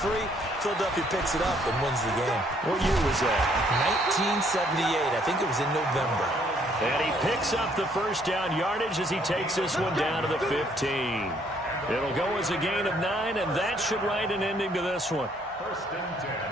Philadelphia picks it up and wins the game. What year was that? 1978. I think it was in November. And he picks up the 1st down yardage as he takes this one down to the 15. It'll go as a gain of 9, and that should write an ending to this one. 1st and 10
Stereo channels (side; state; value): both; normal; correlation 0.66